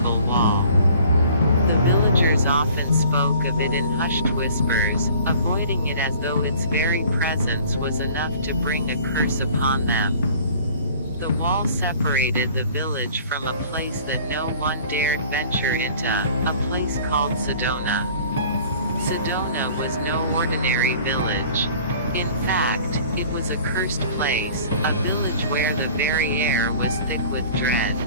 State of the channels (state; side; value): inverted; both; correlation -0.49